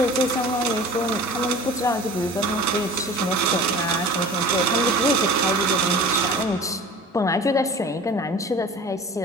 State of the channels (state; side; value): normal; both; correlation 0.41